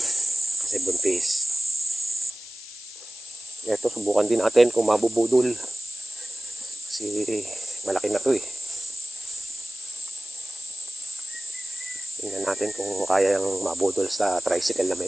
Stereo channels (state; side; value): noise; left; hiss, 15 dB below the sound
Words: Kasi buntis. Ito, subukan din natin kung mabubudol. Kasi, malaki na to eh. Tingnan natin kung kaya yung mabudol sa tricycle na